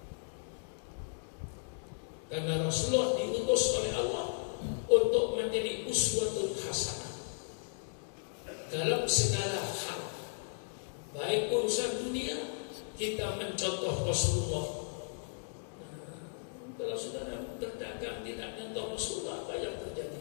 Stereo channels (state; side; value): silent; right; digital silence